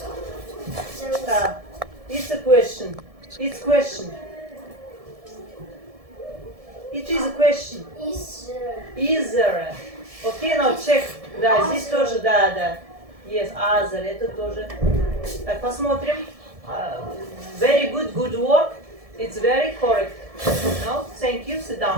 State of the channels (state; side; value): late; left; 1.7 ms